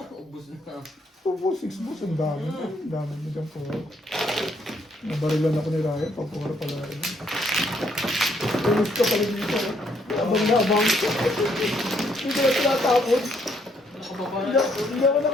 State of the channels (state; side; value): normal; both; correlation 0.70